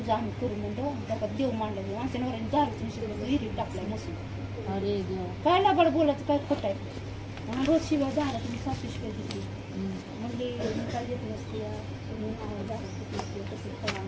आम्ही करू म्हणलं त्याच्यात देव मांडलं. आमच्या नवऱ्याने दारूच विहिरीत टाकलाय मसून. अरे काय लाबाड बोलायचं काय खोट आहे. रोज शिवाय झाला तुम्ही 7 शिवाय घेतली म्हणजे मी काय घेतली असते कसं करा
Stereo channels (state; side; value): identical; both; correlation 1.00